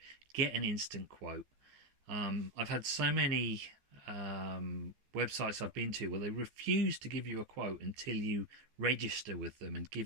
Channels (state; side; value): late; left; 14 ms